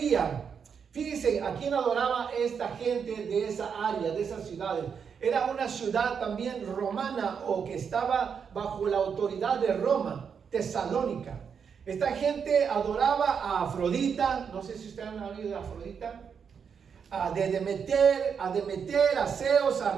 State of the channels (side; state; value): left; quieter; 6.7 dB